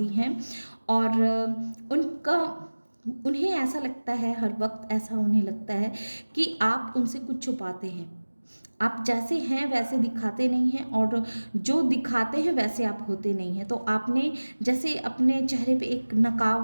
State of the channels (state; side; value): inverted; both; correlation -1.00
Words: हैं। और उन्हें ऐसा लगता है, हर वक्त ऐसा उन्हें लगता है कि आप उनसे कुछ छुपाते हैं। आप जैसे हैं वैसे दिखाते नहीं हैं, और जो दिखाते हैं वैसे आप होते नहीं हैं। तो आपने जैसे अपने चेहरे पे एक